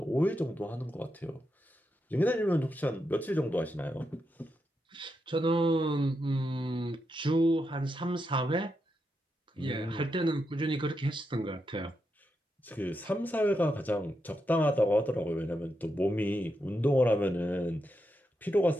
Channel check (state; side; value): normal; both; correlation 0.85